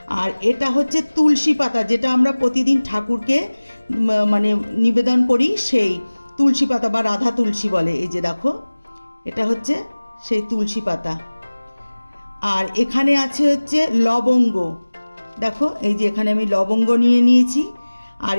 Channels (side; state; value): both; inverted; correlation -1.00